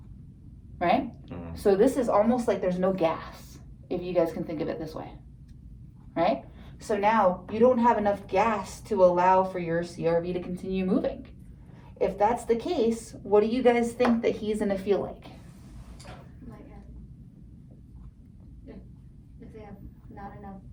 Right? So this is almost like there's no gas, if you guys can think of it this way. Right? So now you don't have enough gas to allow for your CRV to continue moving. If that's the case, what do you guys think that he's gonna feel like? Lightheaded. If they have not enough.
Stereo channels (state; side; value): identical; both; correlation 1.00